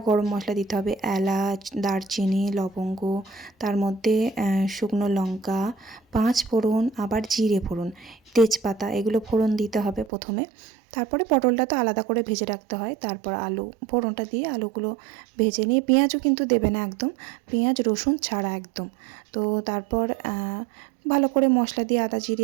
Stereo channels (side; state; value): left; drops out; at 10.1 s